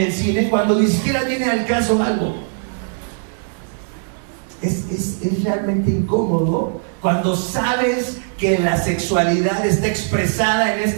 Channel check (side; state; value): left; silent; digital silence